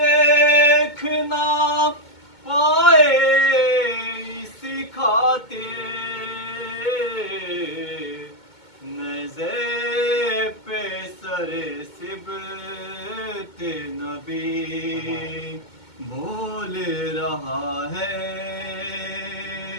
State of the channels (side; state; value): right; late; 2.2 ms